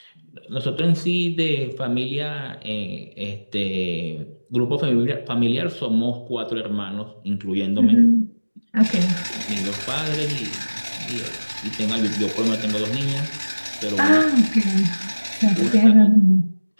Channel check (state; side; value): inverted; both; correlation -1.00